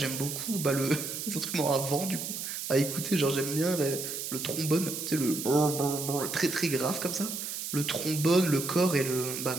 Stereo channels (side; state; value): right; noise; hiss, 5 dB below the sound